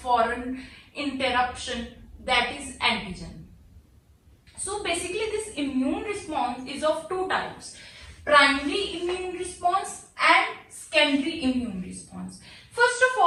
foreign interruption, that is antigen. So basically this immune response is of two types: primary immune response and secondary immune response. First of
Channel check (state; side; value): identical; both; correlation 1.00